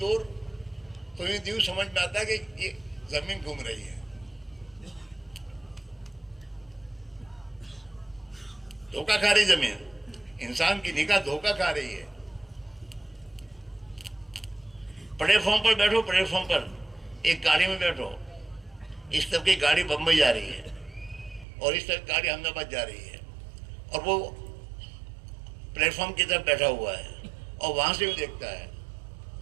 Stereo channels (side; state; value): left; drops out; at 21.5 s